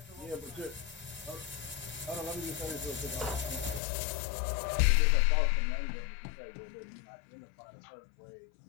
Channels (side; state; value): right; drops out; at 3.8 s